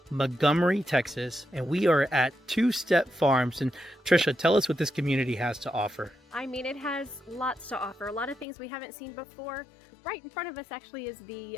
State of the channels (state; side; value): drops out; right; at 8.5 s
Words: Montgomery, Texas, and we are at Two Step Farms. And Trisha, tell us what this community has to offer. I mean, it has lots to offer, a lot of things we haven't seen before. Right in front of us actually is the